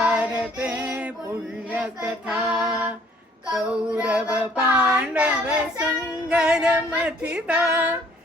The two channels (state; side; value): normal; both; correlation 0.60